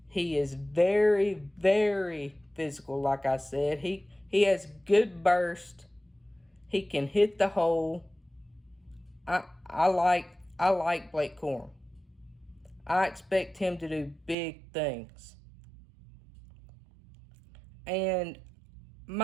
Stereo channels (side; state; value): left; drops out; at 14.4 s